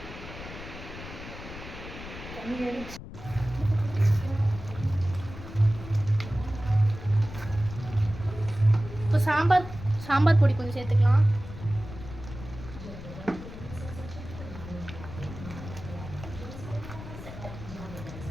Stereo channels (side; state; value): left; noise; rumble, 12 dB below the sound